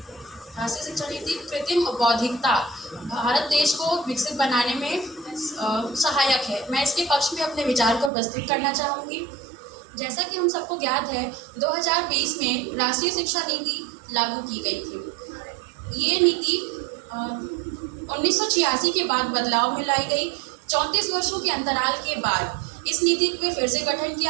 कृत्रिम बौद्धिकता भारत देश को विकसित बनाने में सहायक है। मैं इसके पक्ष में अपने विचार को प्रस्तुत करना चाहूँगी। जैसा कि हम सबको ज्ञात है, 2020 में राष्ट्रीय शिक्षा नीति लागू की गई थी। ये नीति 1986 के बाद बदलाव में लाई गई। 34 वर्षों के अंतराल के बाद इस नीति पे फिर से गठन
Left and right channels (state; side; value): drops out; left; at 8.1 s